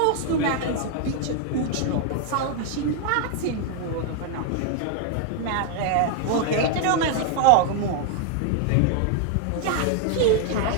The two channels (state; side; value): different; both; correlation 0.00